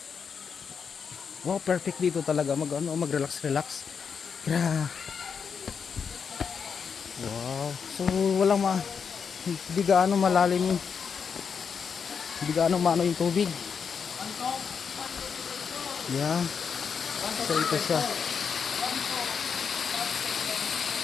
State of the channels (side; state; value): right; quieter; 6.4 dB